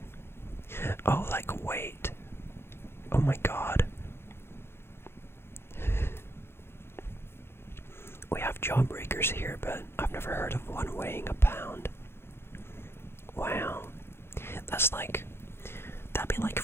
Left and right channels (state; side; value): late; right; 0.12 ms